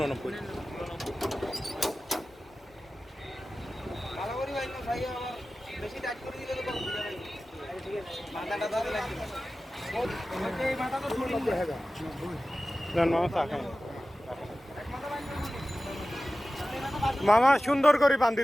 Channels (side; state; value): both; normal; correlation 0.95